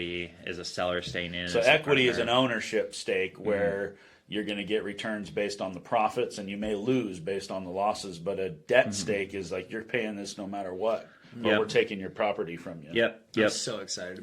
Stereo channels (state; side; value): identical; both; correlation 1.00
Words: is a seller staying in. So equity is an ownership stake where you're going to get returns based on the profits and you may lose based on the losses, but a debt stake is like you're paying this no matter what. or we're taking your property from you. I'm so excited to